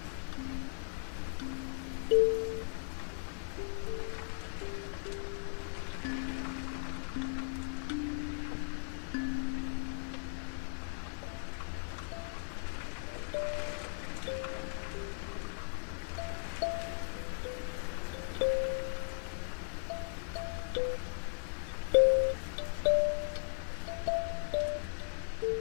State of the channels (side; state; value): right; silent; digital silence